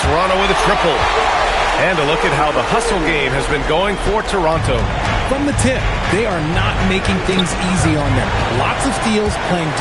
Toronto with a triple. And a look at how the hustle game has been going for Toronto. From the tip, they are not making things easy on them. Lots of steals, playing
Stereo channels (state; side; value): identical; both; correlation 1.00